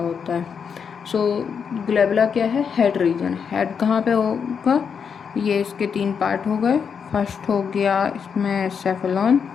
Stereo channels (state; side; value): quieter; right; 6.6 dB